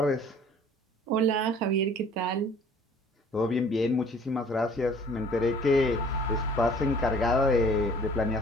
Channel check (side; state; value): both; normal; correlation 0.51